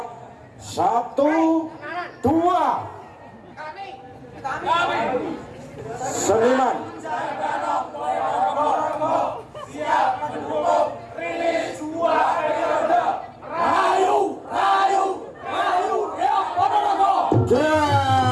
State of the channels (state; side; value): identical; both; correlation 1.00